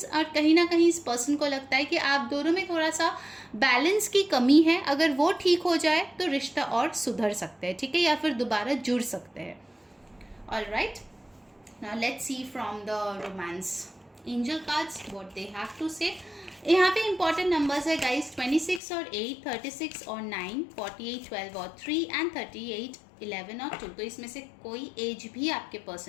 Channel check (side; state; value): right; drops out; at 18.8 s